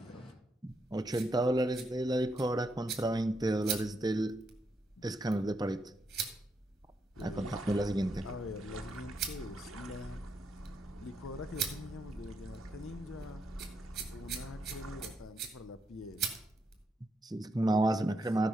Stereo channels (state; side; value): normal; both; correlation 0.80